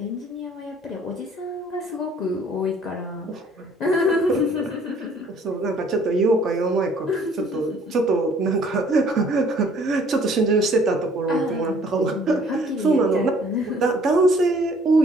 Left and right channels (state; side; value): normal; both; correlation 0.58